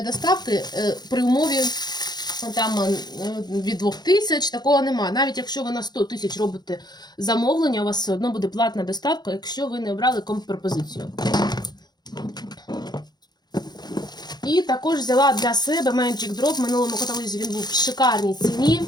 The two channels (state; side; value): late; right; 0.20 ms